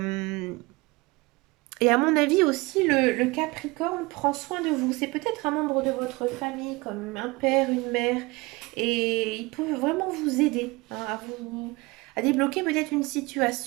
et à mon avis aussi, le Capricorne prend soin de vous. C'est peut-être un membre de votre famille, comme un père, une mère, et il peut vraiment vous aider hein, à débloquer peut-être une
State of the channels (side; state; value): left; quieter; 23.9 dB